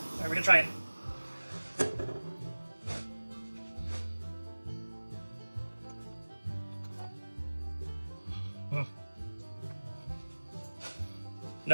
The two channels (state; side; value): inverted; both; correlation -1.00